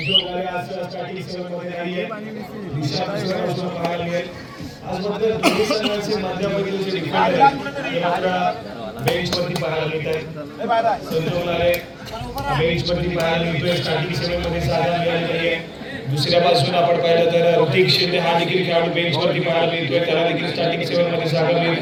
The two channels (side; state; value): both; identical; correlation 1.00